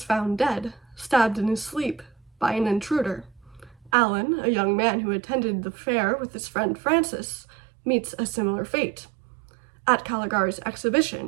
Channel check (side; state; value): left; drops out; at 3.9 s